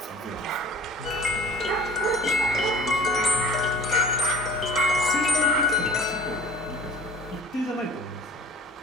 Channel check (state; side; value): normal; both; correlation 0.45